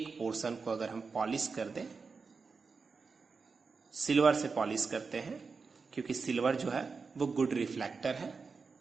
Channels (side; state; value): left; quieter; 4.8 dB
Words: पोर्शन को अगर हम पॉलिश कर दें, सिल्वर से पॉलिश करते हैं क्योंकि सिल्वर जो है वो गुड रिफ्लेक्टर है।